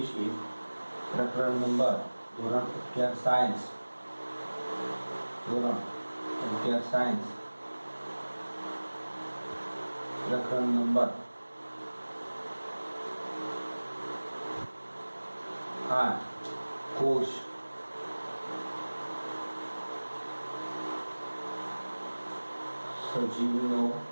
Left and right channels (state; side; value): inverted; both; correlation -1.00